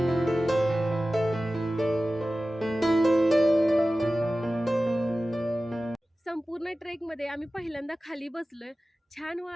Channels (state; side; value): normal; both; correlation 0.95